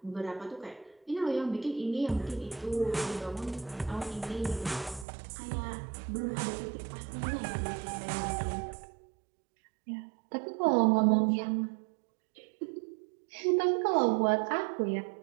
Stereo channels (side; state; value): left; drops out; at 5.1 s